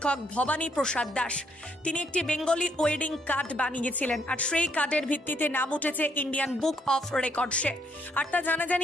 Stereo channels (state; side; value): normal; both; correlation 0.71